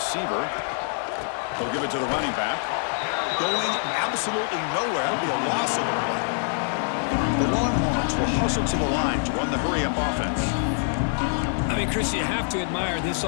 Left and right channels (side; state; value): right; silent; 62 dB below the other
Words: They'll give it to the running back. Going absolutely nowhere. That'll be a loss of the play. The Longhorns will hustle to the line to run the hurry-up offense. I mean, Chris, you have to admire this